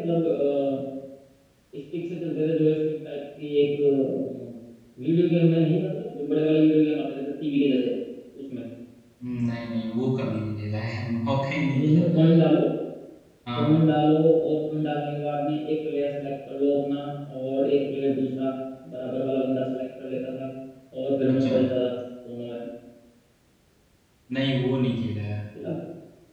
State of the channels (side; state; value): both; identical; correlation 1.00